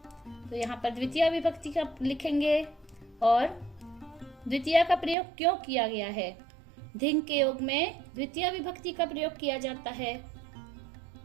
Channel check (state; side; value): drops out; left; at 5.2 s